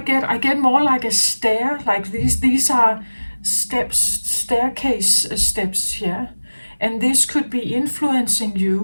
more like a stair. Like these are steps, staircase steps here, and this could be influencing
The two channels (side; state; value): both; inverted; correlation -1.00